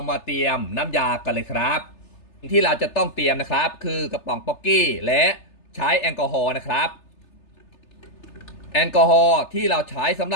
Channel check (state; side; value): late; right; 3.3 ms